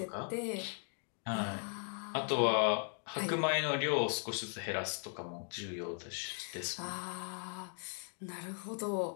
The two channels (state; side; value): silent; right; 52 dB below the other